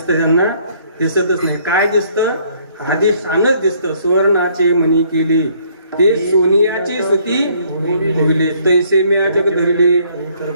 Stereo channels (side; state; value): both; inverted; correlation -0.64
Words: त्यांना दिसतच नाही. काय दिसतं? आदेशानच दिसतं. सुवर्णाचे मणी केले ते सोनियाचे सुती होईल, तैसे म्या जग धरले,